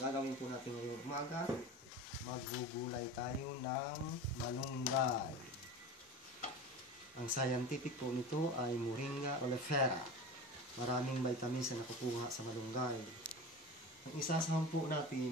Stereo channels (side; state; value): both; normal; correlation 0.31